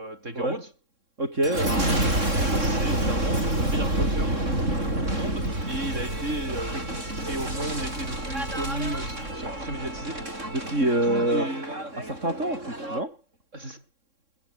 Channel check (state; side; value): late; left; 3.6 ms